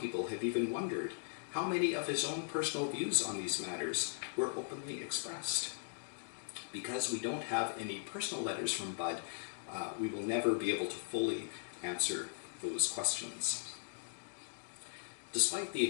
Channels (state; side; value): silent; right; digital silence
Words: have even wondered how many of his own personal views on these matters were openly expressed. Because we don't have any personal letters from Budd, we will never be able to fully answer those questions. Despite the